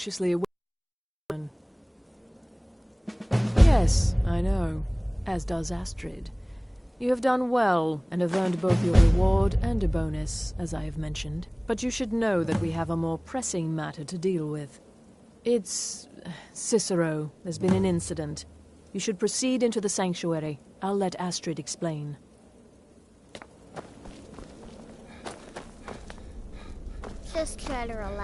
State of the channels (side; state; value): both; identical; correlation 1.00